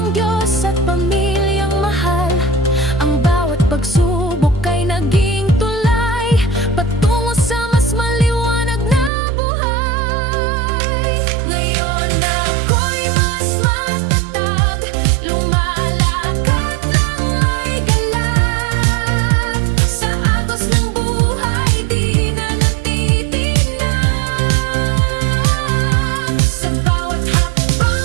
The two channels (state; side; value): drops out; left; at 9.1 s